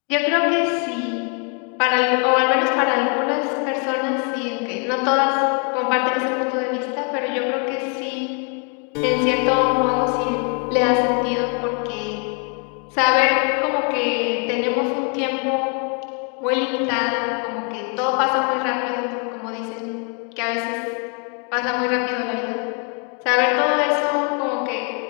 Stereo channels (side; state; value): right; quieter; 38.6 dB